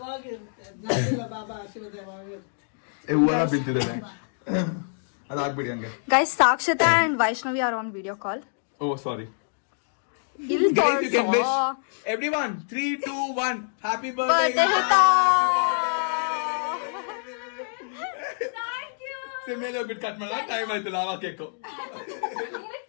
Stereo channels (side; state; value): right; silent; digital silence